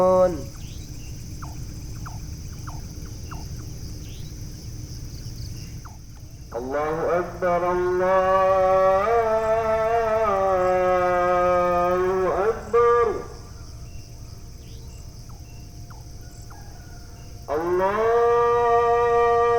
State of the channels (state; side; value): identical; both; correlation 1.00